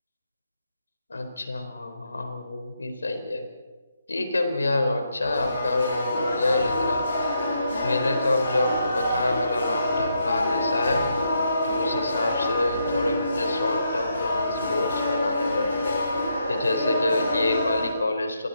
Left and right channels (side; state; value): both; inverted; correlation -0.79